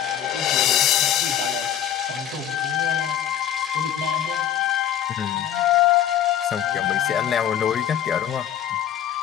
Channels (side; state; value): right; quieter; 10.3 dB